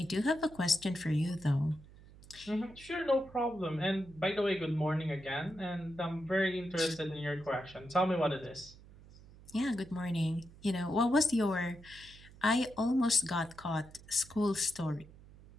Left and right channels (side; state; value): right; noise; hum, 21 dB below the sound